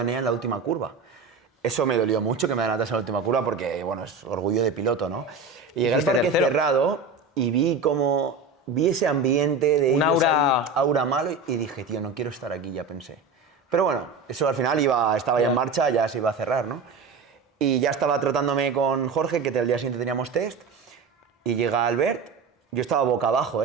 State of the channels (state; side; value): quieter; left; 4.5 dB